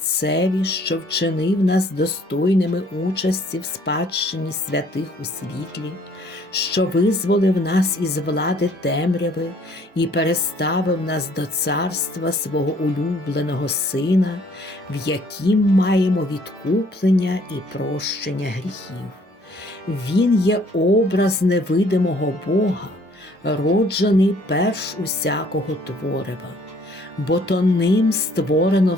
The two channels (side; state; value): both; normal; correlation 0.60